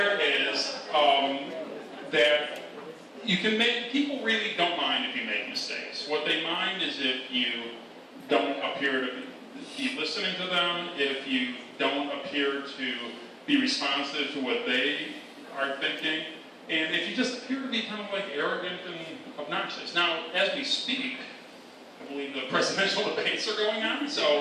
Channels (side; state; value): both; identical; correlation 1.00